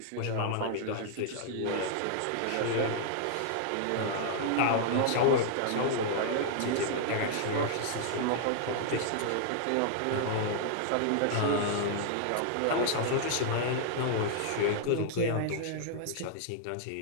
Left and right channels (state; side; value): different; both; correlation 0.00